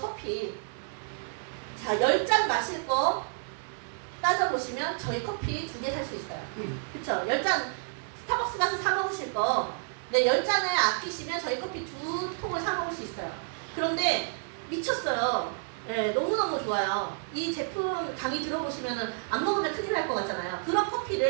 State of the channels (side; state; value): left; silent; digital silence